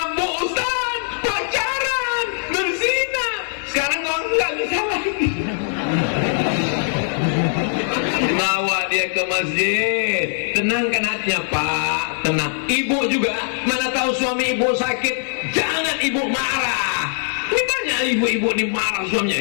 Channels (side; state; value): right; silent; 65 dB below the other